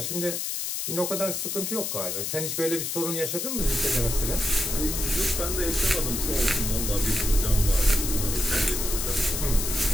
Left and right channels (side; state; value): left; noise; hiss, 2 dB below the sound